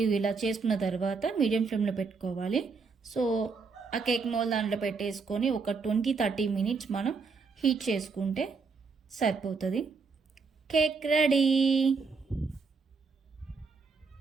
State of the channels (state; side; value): quieter; left; 4.8 dB